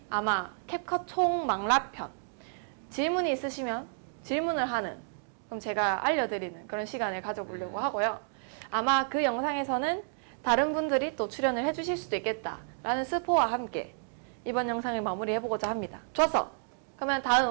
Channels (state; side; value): silent; left; digital silence